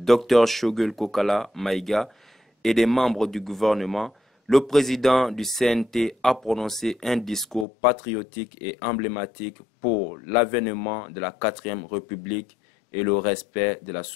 Shogul Kokala Maïga, et des membres du gouvernement, le président du CNT a prononcé un discours patriotique et emblématique pour l'avènement de la 4e République et le respect de la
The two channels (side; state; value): right; drops out; at 7.7 s